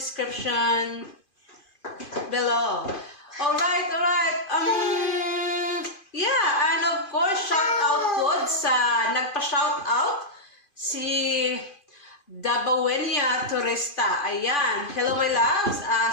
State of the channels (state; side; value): late; right; 2.5 ms